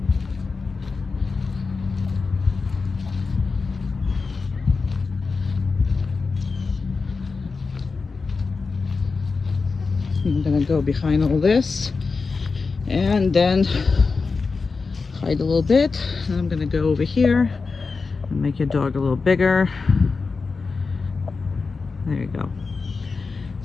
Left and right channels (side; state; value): right; quieter; 4.4 dB